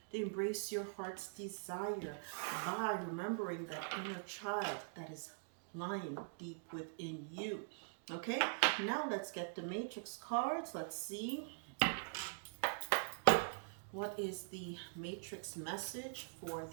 to embrace your heart's desire by remembering that inner child that is lying deep within you. Okay, now let's get the matrix cards. Let's see. What is the matrix message for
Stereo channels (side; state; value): left; silent; digital silence